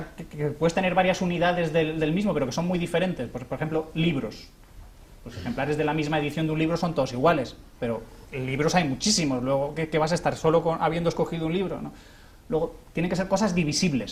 que puedes tener varias unidades del mismo, pero que son muy diferentes. Pues, por ejemplo, libros. Los ejemplares de la misma edición de un libro son todos iguales, pero libros hay muchísimos. Luego, ¿qué vas a estar solo habiendo escogido un libro, ¿no? Luego, tienen que ser cosas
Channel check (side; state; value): both; identical; correlation 1.00